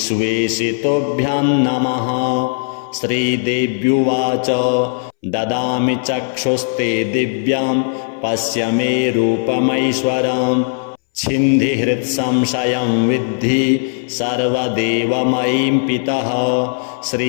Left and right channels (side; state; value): right; silent; 64 dB below the other